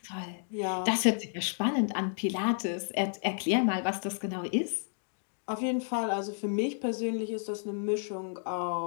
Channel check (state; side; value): silent; right; digital silence